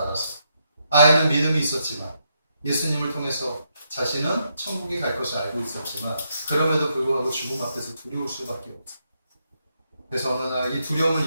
아이는 믿음이 있었지만 예수님을 통해서 자신은 천국에 갈 것을 알고 있었지만 그럼에도 불구하고 죽음 앞에서 두려울 수밖에 없어요. 그래서 어느 날 이 두려움을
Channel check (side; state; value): both; inverted; correlation -0.80